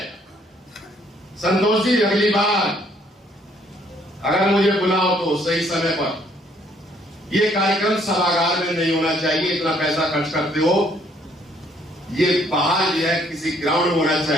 संतोष जी, अगली बार अगर मुझे बुलाओ तो सही समय पर। ये कार्यक्रम सभागार में नहीं होना चाहिए, इतना पैसा खर्च करते हो, ये बाहर जो है किसी ग्राउंड में होना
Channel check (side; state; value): both; normal; correlation 0.65